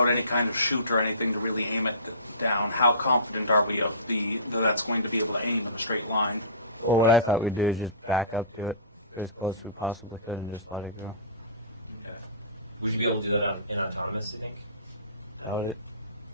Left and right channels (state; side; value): inverted; both; correlation -0.35